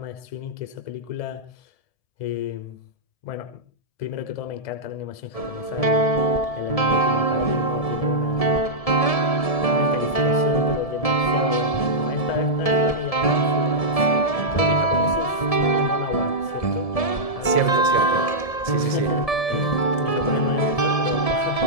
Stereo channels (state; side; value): late; right; 1.7 ms